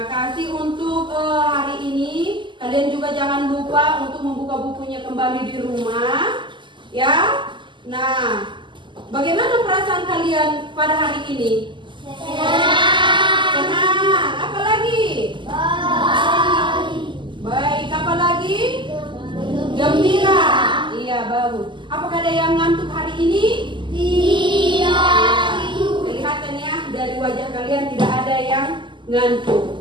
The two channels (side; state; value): left; late; 0.24 ms